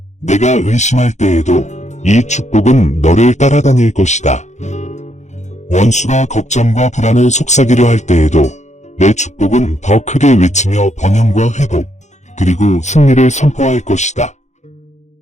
내가 의심할 때에도 이 축복은 너를 따라다닐 것이다. 원수가 걱정과 불안을 속삭이려 할 때에도 내 축복은 더 크게 외치며 번영과 회복, 그리고 승리를 선포할 것이다.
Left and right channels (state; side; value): late; right; 0.34 ms